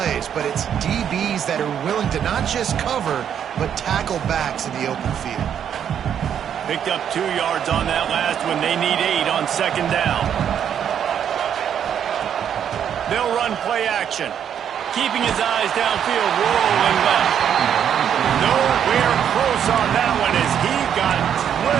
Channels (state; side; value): quieter; left; 8.9 dB